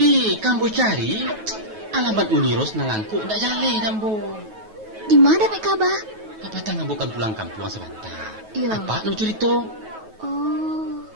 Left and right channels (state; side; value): late; left; 9.3 ms